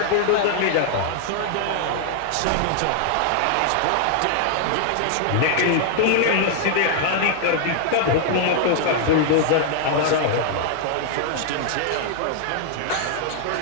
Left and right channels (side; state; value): both; different; correlation 0.00